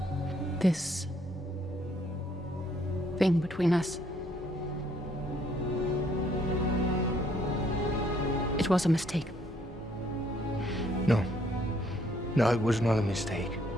This thing between us. It was a mistake. No. No, it was not a mistake.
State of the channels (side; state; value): both; normal; correlation 0.67